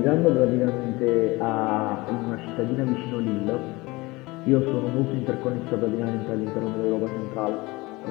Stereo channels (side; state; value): right; quieter; 22.5 dB